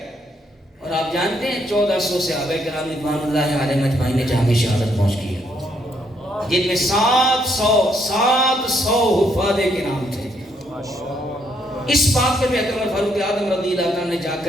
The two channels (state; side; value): normal; both; correlation 0.73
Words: اور آپ جانتے ہیں 1400 صحابہ کرام رضوان اللہ علیہم اجمعین نے جہاں شہادت پہنچ کی ہے، جن میں 700 حفاظ کرام تھے۔ اس بات پر بھی اکرم فاروق اعظم رضی اللہ عنہ نے جا